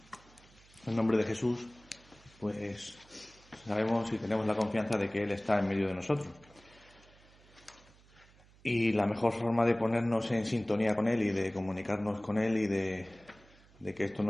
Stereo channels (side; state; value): right; noise; hum, 26 dB below the sound